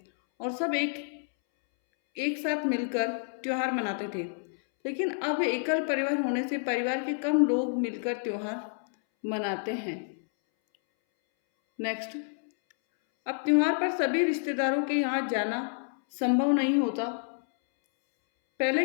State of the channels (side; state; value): right; silent; 59 dB below the other